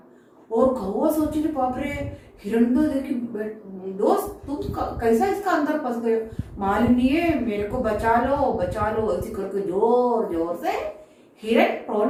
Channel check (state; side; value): identical; both; correlation 1.00